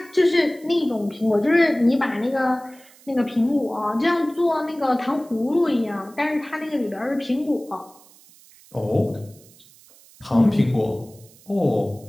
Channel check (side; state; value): right; noise; hiss, 26 dB below the sound